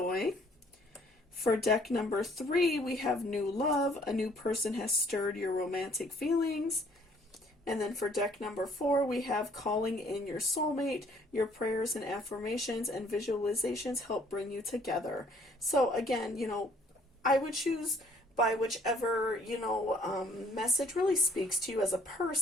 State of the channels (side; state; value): both; normal; correlation 0.60